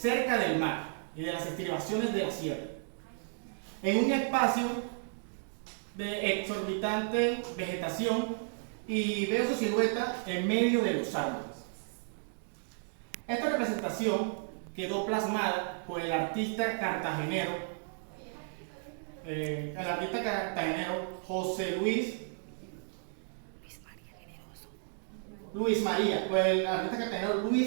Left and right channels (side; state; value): left; silent; digital silence